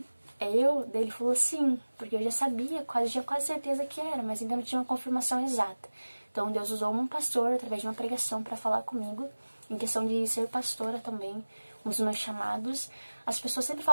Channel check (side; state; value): both; inverted; correlation -1.00